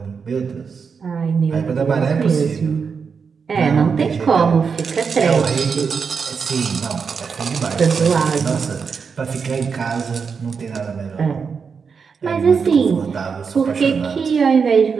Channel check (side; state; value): left; quieter; 5.8 dB